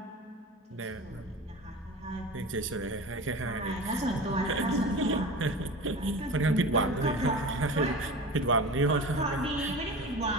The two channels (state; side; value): normal; both; correlation 0.32